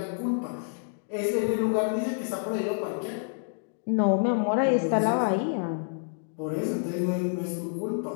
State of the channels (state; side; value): silent; right; digital silence